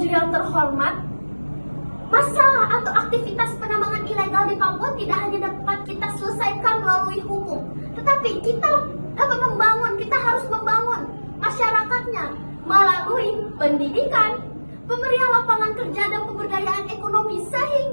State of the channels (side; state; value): both; inverted; correlation -1.00